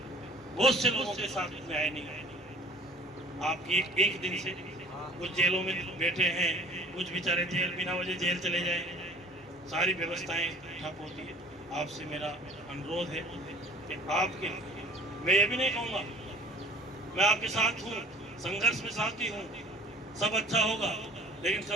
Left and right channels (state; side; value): normal; both; correlation 0.49